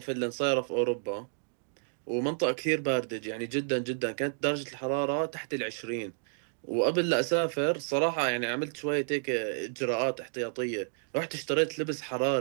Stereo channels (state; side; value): silent; left; digital silence